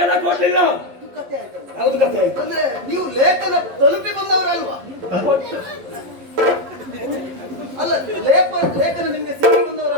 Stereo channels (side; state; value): left; late; 11 ms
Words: ಕೊಡ್ಲಿಲ್ಲ? ಇದು ಕಥೆ ಆಯ್ತಲ್ಲ. ಯಾವ್ದು ಕಥೆ ಆಯ್ತು? ಅಂದ್ರೆ ನೀವು ಲೇಖನ ತಲುಪಿ ಬಂದವರಲ್ವಾ? ಅಲ್ಲ, ಲೇಖನ ನಿಮ್ಗೆ ಸಿಕ್ಕಿ